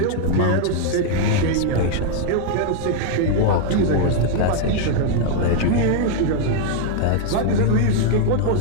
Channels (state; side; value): different; both; correlation 0.00